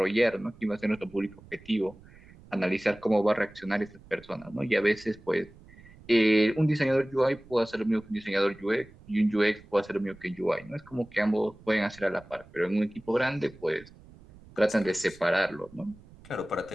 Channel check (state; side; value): noise; right; rumble, 22 dB below the sound